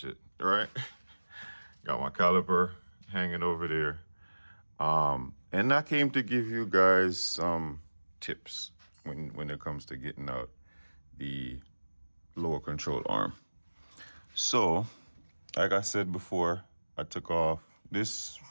right? Got my caliper hanging over there. And I came to give you guys some tips when it comes to getting out the lower control arm. So, like I said before, I took off this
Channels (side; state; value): both; inverted; correlation -1.00